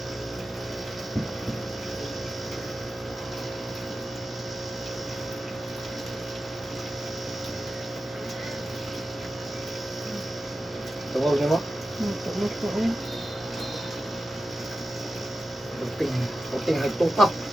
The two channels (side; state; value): both; normal; correlation 0.92